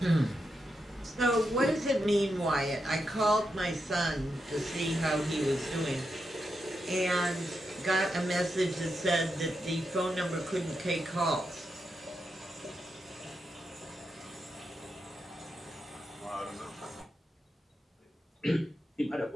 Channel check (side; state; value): both; normal; correlation 0.85